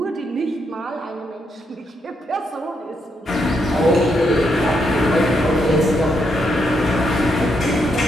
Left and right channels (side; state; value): both; normal; correlation 0.79